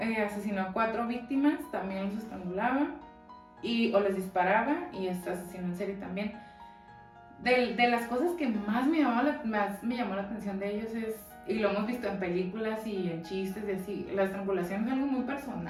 asesinó a 4 víctimas, también los estrangulaba o les disparaba, y es asesino en serie también. De las cosas que más me llamó la atención de ellos y lo hemos visto en películas y en chistes y así, la estrangulación es algo muy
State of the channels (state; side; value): identical; both; correlation 1.00